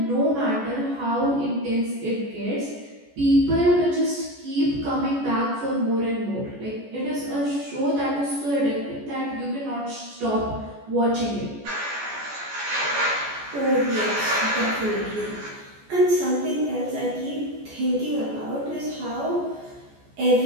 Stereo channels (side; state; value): left; late; 14 ms